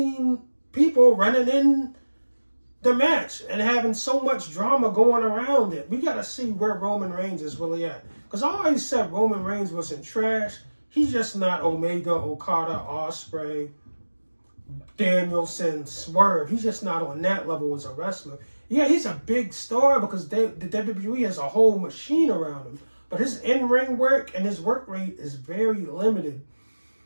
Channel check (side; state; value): both; inverted; correlation -1.00